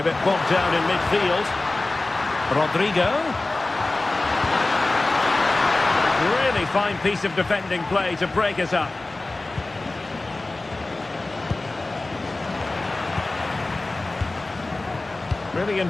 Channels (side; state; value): right; quieter; 3.0 dB